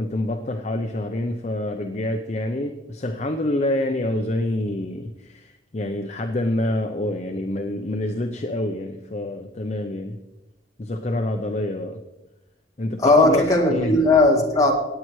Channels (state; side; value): normal; both; correlation 0.48